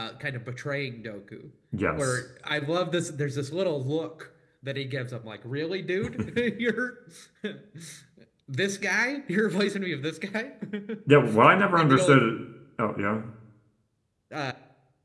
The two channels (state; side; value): identical; both; correlation 1.00